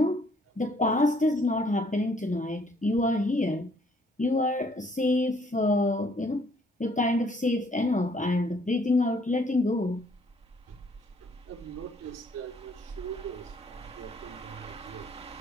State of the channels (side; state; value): both; normal; correlation 0.64